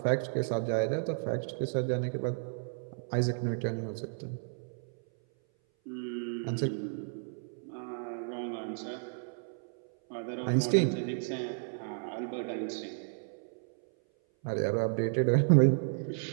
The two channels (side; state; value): left; silent; 56 dB below the other